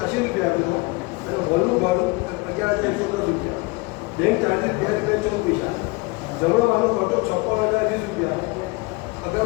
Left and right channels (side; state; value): right; quieter; 25.2 dB